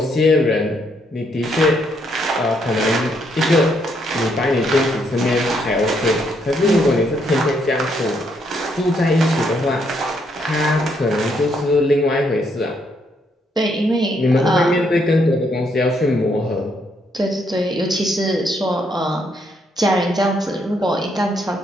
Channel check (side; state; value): both; normal; correlation 0.74